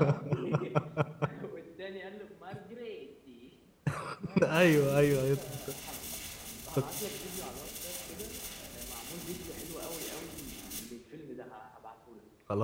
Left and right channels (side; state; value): both; identical; correlation 1.00